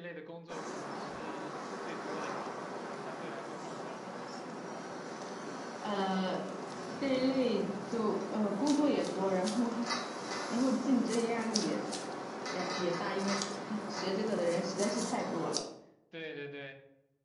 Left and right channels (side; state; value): both; identical; correlation 1.00